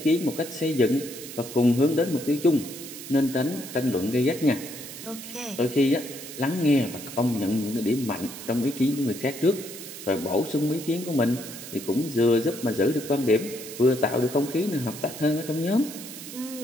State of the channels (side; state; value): right; noise; hiss, 12 dB below the sound